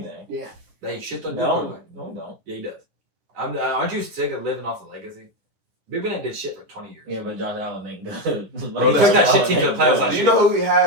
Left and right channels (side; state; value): left; late; 10 ms